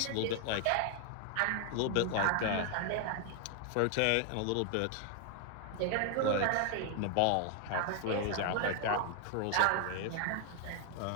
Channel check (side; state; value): both; different; correlation 0.00